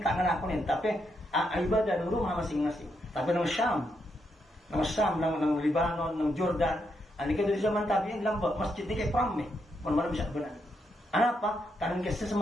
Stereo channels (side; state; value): both; normal; correlation 0.80